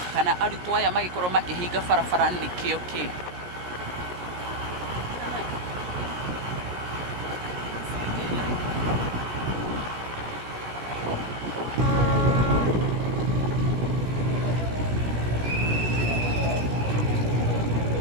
kana arutwo aya magikorwo makihinga barabara nikio ki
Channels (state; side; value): late; left; 17 ms